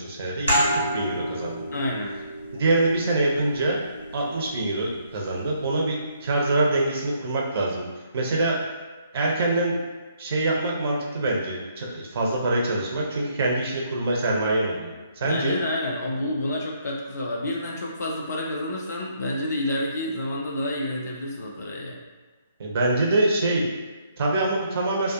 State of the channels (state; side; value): inverted; both; correlation -0.70